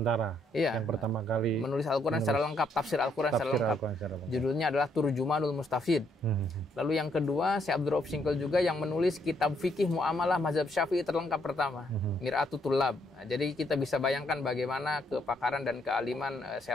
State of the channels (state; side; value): normal; both; correlation 0.72